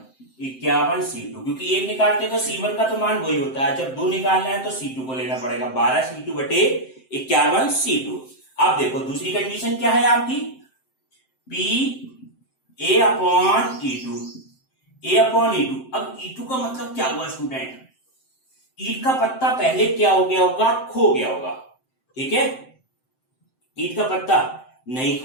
51 C2, क्योंकि एक निकालते तो C1 का तो मान वही होता है। जब 2 निकालना है तो C2 को लेना पड़ेगा। 12C2 बटे 51 C2। अब देखो दूसरी कंडीशन क्या है आपकी? PA/E2। अब E2 का मतलब क्या हुआ स्टूडेंट? ईट का पत्ता पहले क्या हो गया होगा? खो गया होगा। ठीक है, ईट का पत्ता नहीं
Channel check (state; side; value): late; right; 7.7 ms